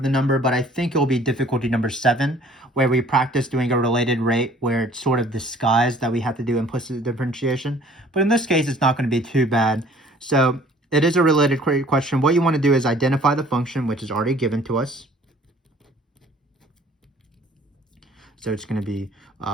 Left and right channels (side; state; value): both; normal; correlation 0.54